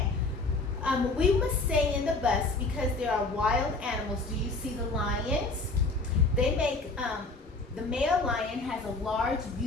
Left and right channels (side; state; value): right; quieter; 3.4 dB